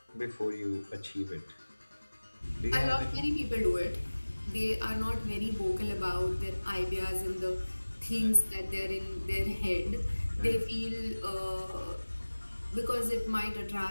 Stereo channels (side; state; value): both; inverted; correlation -1.00